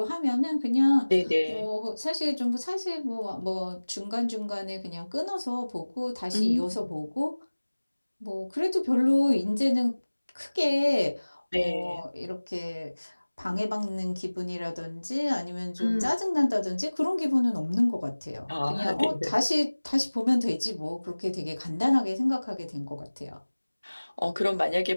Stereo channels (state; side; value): inverted; both; correlation -1.00